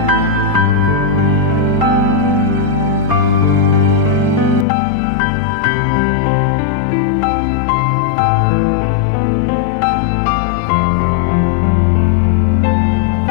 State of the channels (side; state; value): right; drops out; at 4.7 s